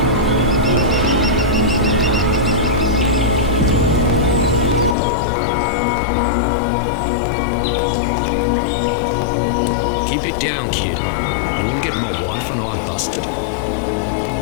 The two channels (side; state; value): right; drops out; at 5.0 s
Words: Keep it down, kid. You want to get my wife and I busted?